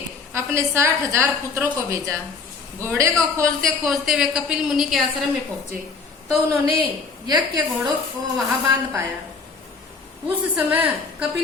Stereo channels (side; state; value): right; quieter; 4.8 dB